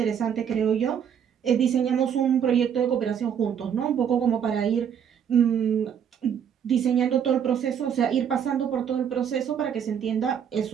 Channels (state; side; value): quieter; left; 8.2 dB